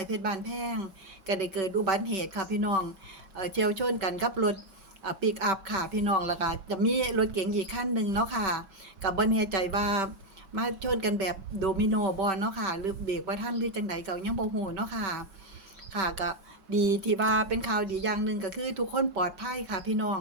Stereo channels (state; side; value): late; left; 6.1 ms